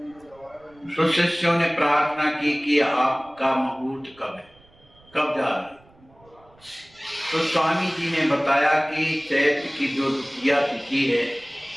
तो शिष्यों ने प्रार्थना की कि आपका मुहूर्त कब है, कब जा रहे हैं। तो स्वामी जी ने बताया कि चैत्र की जो द्वितीया तिथि है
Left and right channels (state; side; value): noise; right; rumble, 29 dB below the sound